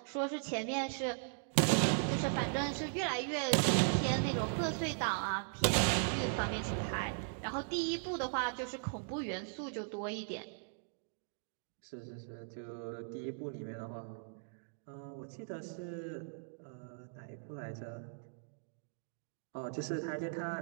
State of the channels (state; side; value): silent; left; digital silence